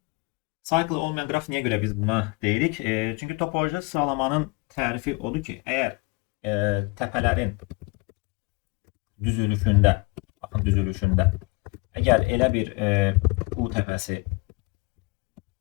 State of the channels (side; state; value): right; quieter; 27.6 dB